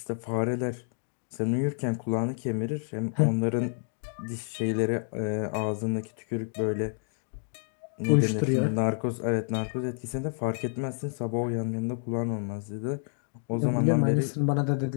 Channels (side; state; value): right; silent; 59 dB below the other